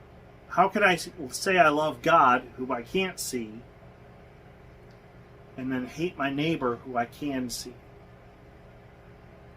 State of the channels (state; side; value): identical; both; correlation 1.00